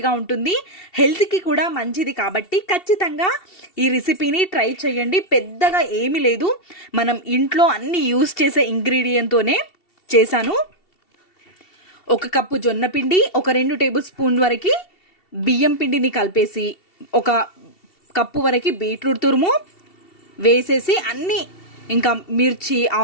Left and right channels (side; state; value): right; late; 2.7 ms